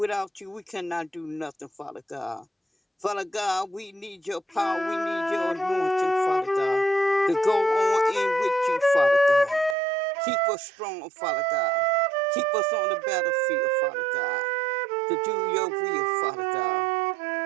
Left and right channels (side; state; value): left; drops out; at 9.8 s